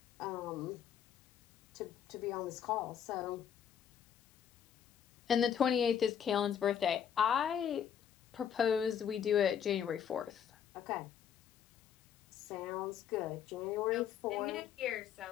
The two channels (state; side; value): quieter; right; 8.6 dB